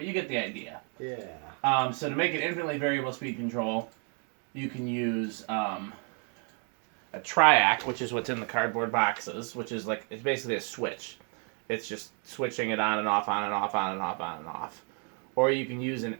you get the idea. Yeah. So to make an infinitely variable speed control, you can use a triac, which is what's in the cardboard boxes, which is like, it's basically a switch. It's just switching it on and off, on and off, on and off, on and off. Or you can use an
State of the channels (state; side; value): quieter; left; 39.6 dB